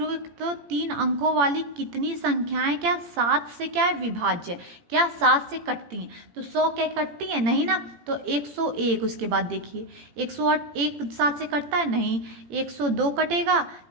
तो 3 अंकों वाली कितनी संख्याएं क्या 7 से क्या है विभाज्य, क्या 7 से कटती हैं। तो 100 क्या कटती है नहीं ना, तो 101। उसके बाद देखिए 108 एक 7 से कटता है नहीं, 102 कटेगा,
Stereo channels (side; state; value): left; late; 18 ms